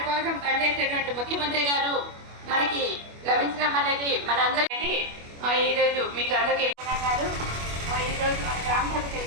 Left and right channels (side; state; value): left; late; 25 ms